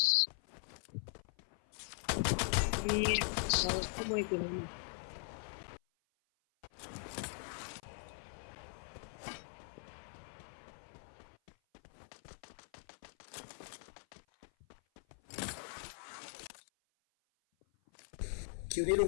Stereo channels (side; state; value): right; silent; 51 dB below the other